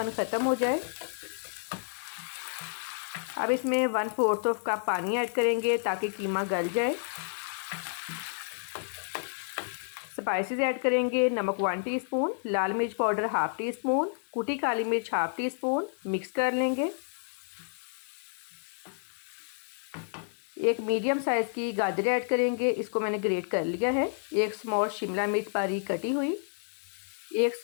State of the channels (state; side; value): silent; right; digital silence